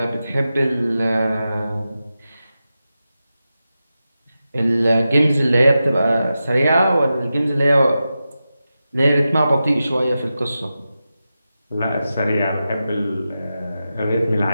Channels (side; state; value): both; inverted; correlation -0.92